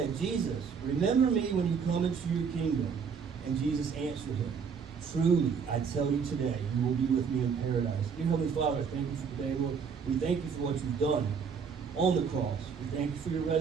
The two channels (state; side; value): quieter; left; 6.2 dB